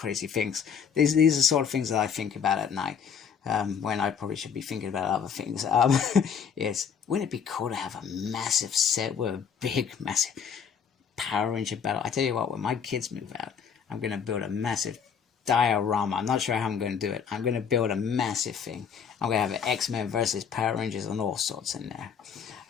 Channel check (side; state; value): right; quieter; 7.1 dB